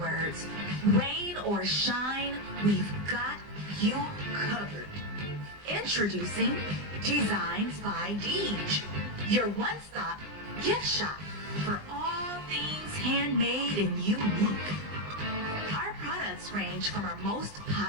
rain or shine, we've got you covered. Introducing Designs by Deej, your one-stop gift shop for all things handmade and unique. Our products range from our most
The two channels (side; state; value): left; late; 20 ms